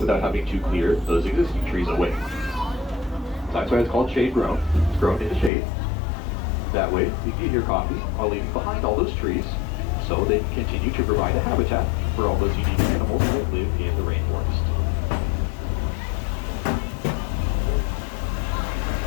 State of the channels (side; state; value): right; drops out; at 5.5 s